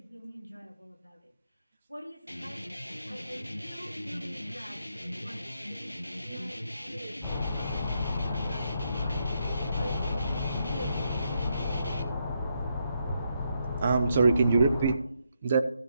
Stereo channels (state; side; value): inverted; both; correlation -0.80